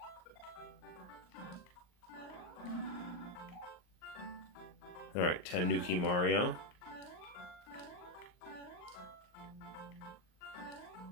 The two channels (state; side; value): late; right; 39 ms